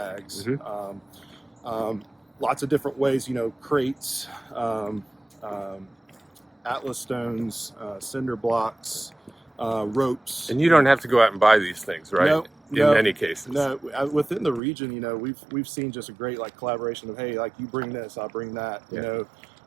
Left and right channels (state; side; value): drops out; left; at 14.6 s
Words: Lots of different ways, crates, Atlas stones, cinder blocks, ropes. And you don't have to go out and buy these things, right? No, in many cases. No, within the region, we've seen just a great collaboration of, hey, you bring this, I'll bring that,